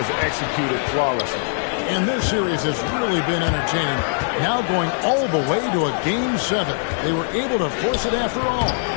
executed flawlessly. And this series has really been entertaining. Now going all the way to a Game 7. They were able to force it after all.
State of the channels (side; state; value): right; silent; digital silence